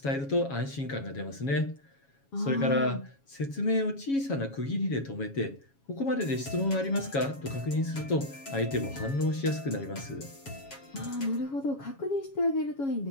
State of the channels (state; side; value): late; right; 7.2 ms